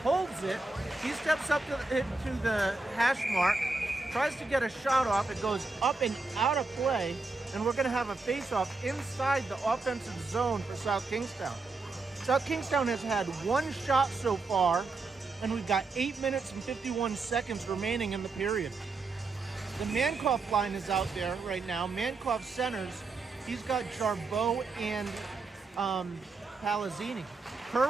holds it. He steps up to the hash mark, tries to get a shot off. It goes up and out of play, and we're going to have a face-off inside the offensive zone for South Kingstown. South Kingstown has had one shot so far, and we've got 8 minutes and 51 seconds remaining in the period. The Mankoff line is out there right now. Mankoff centers. He's got Jarbeau and Palazzini.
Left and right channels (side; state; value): left; quieter; 3.7 dB